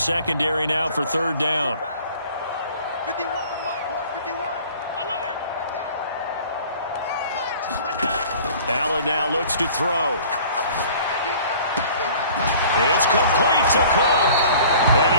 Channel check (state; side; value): inverted; both; correlation -0.48